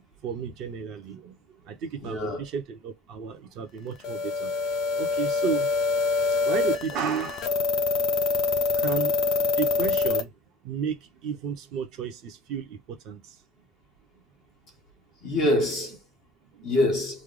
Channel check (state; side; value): normal; both; correlation 0.45